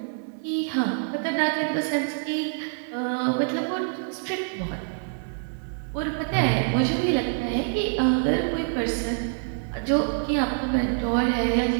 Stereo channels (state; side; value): silent; left; digital silence